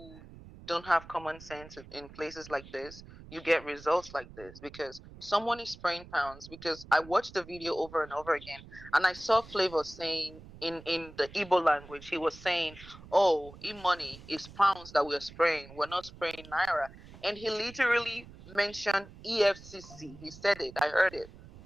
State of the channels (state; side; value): noise; right; rumble, 18 dB below the sound